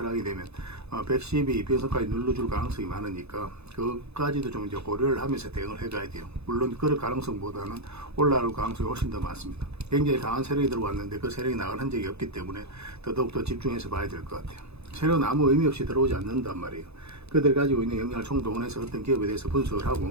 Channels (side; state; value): left; late; 0.80 ms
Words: 되면 112평선까지 눌러줄 가능성이 많으니까 그까지도 좀 이제 고려를 하면서 대응을 해가야 돼요. 물론 그럴 가능성보다는 올라올 가능성이 훨씬 더 많습니다. 굉장히 강한 세력이 들어왔는데 그 세력이 나갈 흔적이 없기 때문에 더더욱더 집중해서 봐야 될 것 같아요. 세력은 아무 의미 없이 들어오지 않는단 말이에요. 그들 가지고 있는 역량을 총동원해서 어떤 기업에 대해서 분석을